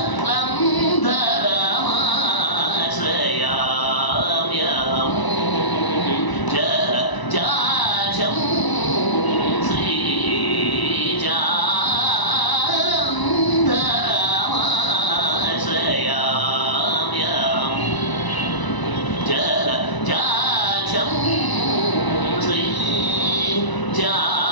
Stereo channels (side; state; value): right; late; 1.0 ms